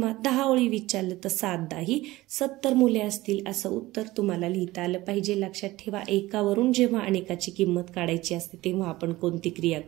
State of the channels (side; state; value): left; quieter; 18.4 dB